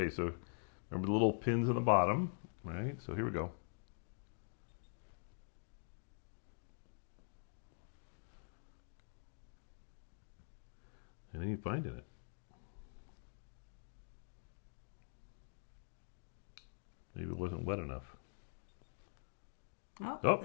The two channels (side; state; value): right; silent; digital silence